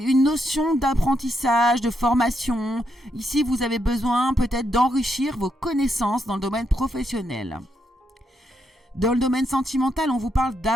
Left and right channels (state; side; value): normal; both; correlation 0.80